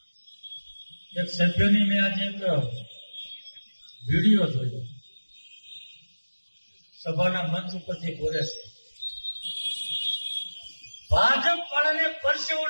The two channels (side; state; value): both; inverted; correlation -1.00